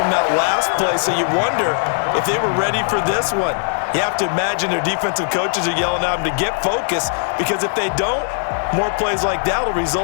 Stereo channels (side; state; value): right; silent; digital silence